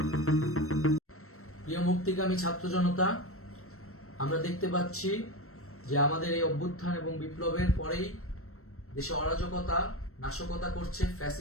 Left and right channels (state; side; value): late; right; 0.63 ms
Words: মুক্তিকামী ছাত্র জনতা, আমরা দেখতে পাচ্ছি যে আমাদের এই অভ্যুত্থান এবং বিপ্লবের পরেই দেশে অরাজকতা নাশকতা করছে